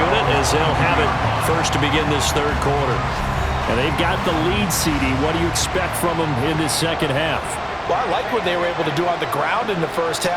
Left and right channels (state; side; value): identical; both; correlation 1.00